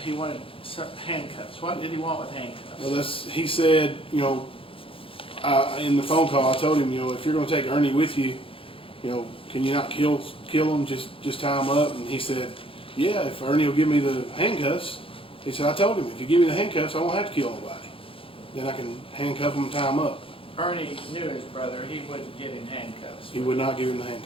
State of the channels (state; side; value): late; right; 0.26 ms